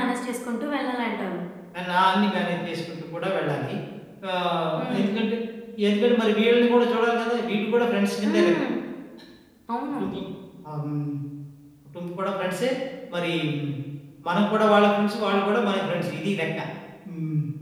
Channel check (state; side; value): identical; both; correlation 1.00